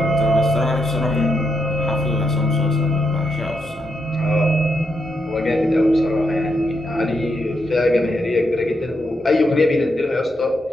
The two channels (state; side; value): normal; both; correlation 0.81